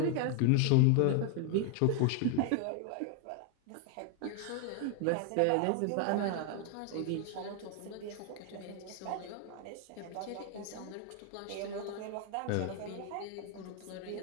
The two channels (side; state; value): both; different; correlation 0.00